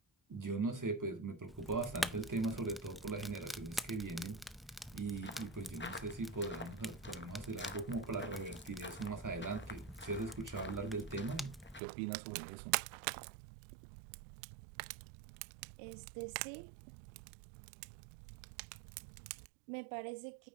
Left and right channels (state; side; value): drops out; left; at 11.8 s